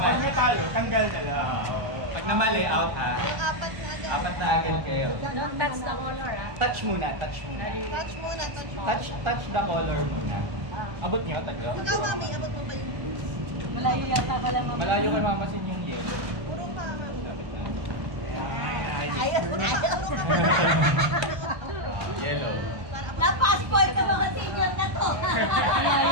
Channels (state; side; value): late; left; 1.3 ms